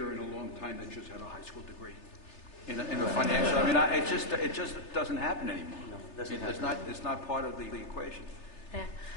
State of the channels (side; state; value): right; late; 3.3 ms